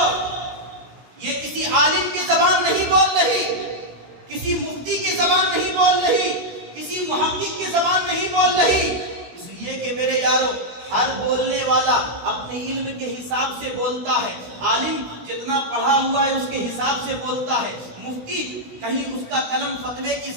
یہ کسی عالم کی زبان نہیں بول رہی، کسی مفتی کی زبان نہیں بول رہی، کسی محقق کی زبان نہیں بول میرے یارو ہر بولنے والا اپنے علم کے حساب سے بولتا ہے. عالم جتنا پڑھا ہوا ہے اس کے حساب سے بولتا ہے. مفتی کہیں اس کا قلم فتوے کی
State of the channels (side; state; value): left; late; 16 ms